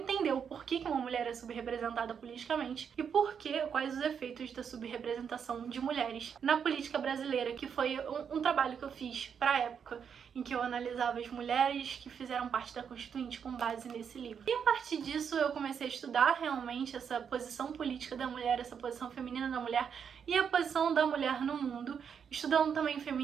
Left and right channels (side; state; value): left; quieter; 7.2 dB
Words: o porquê que uma mulher é subrepresentada politicamente e quais os efeitos da subrepresentação de mulheres na política brasileira, que foi um trabalho que eu fiz pra época em que eu analisava as mulheres que fizeram parte da Constituinte com base nesse livro. E a partir disso eu comecei a estudar realmente essa posição política da mulher, essa posição feminina da mulher e a posição da mulher no mundo, estudando também